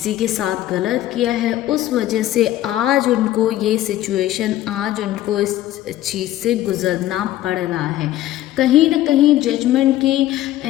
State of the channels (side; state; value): right; quieter; 14.1 dB